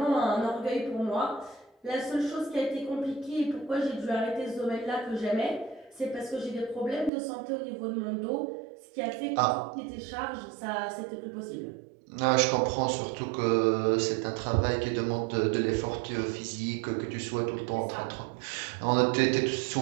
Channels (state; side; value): drops out; left; at 7.1 s